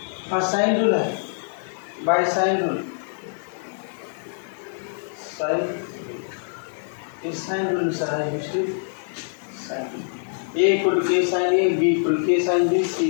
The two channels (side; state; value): right; silent; digital silence